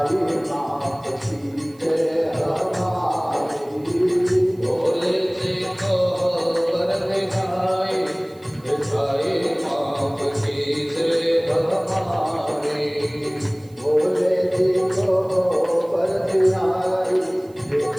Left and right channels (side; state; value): right; noise; hiss, 29 dB below the sound